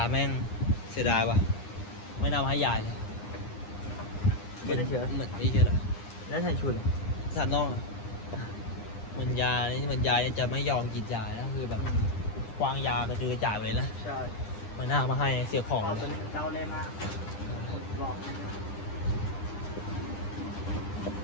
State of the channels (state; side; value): late; right; 9.9 ms